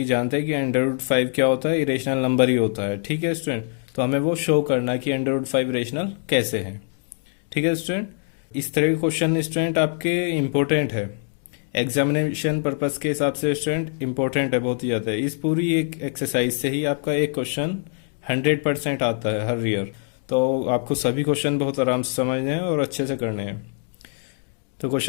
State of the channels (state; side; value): silent; right; 57 dB below the other